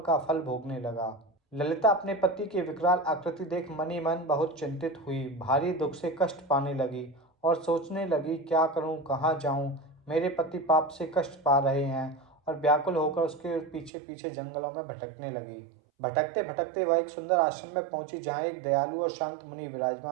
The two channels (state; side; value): drops out; left; at 13.9 s